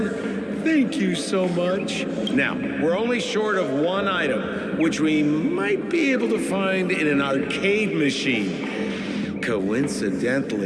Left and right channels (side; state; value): both; identical; correlation 1.00